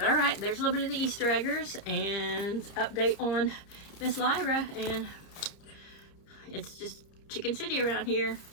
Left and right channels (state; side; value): late; right; 30 ms